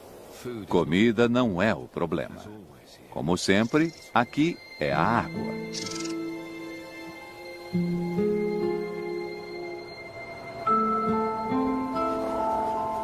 Comida não é o problema. Como sempre, aqui é a água.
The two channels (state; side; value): identical; both; correlation 1.00